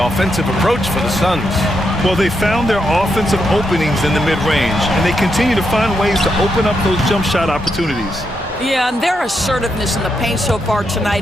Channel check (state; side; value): normal; both; correlation 0.82